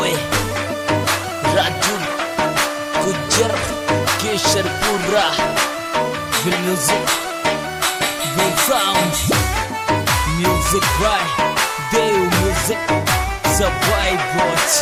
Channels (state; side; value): identical; both; correlation 1.00